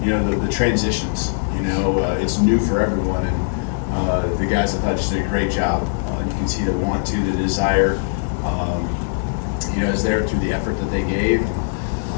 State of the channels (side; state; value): right; silent; digital silence